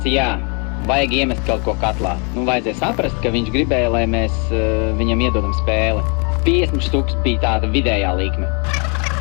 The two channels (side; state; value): right; quieter; 35.4 dB